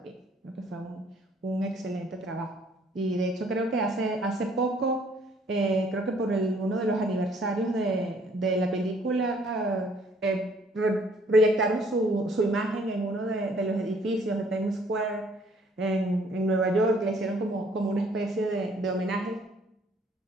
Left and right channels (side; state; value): both; normal; correlation 0.61